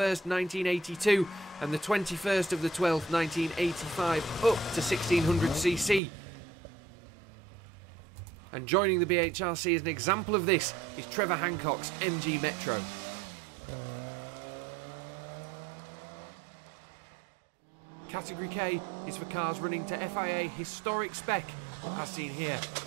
1982 and the 21st of the 12th 1985 up to 1600cc. And joining the BHRC as an example of this is Trevor Hancock's MG Metro. Category K is for cars running to FIA historic spec, as seen here in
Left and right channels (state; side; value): drops out; left; at 6.0 s